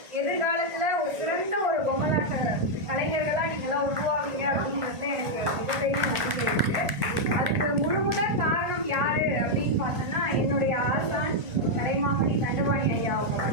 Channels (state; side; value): late; left; 1.4 ms